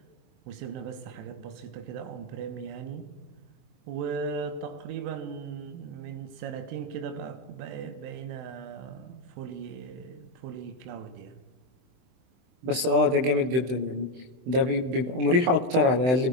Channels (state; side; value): late; left; 23 ms